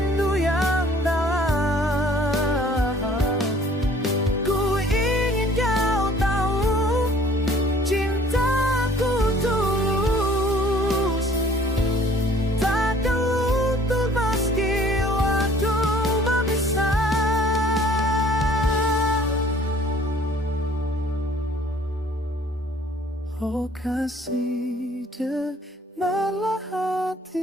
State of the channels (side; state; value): both; normal; correlation 0.55